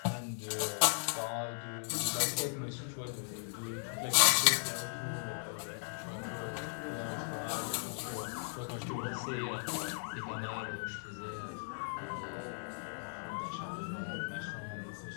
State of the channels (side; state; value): right; silent; digital silence